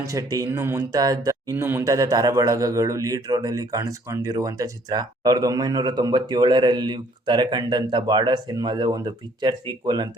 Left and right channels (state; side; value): normal; both; correlation 0.61